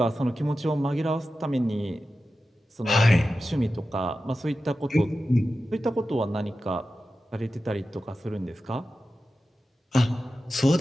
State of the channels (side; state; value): both; normal; correlation 0.93